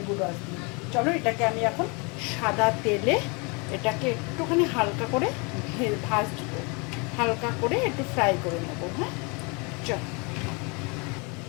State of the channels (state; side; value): quieter; right; 31.1 dB